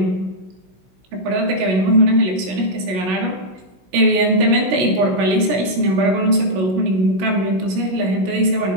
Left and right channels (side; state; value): left; late; 16 ms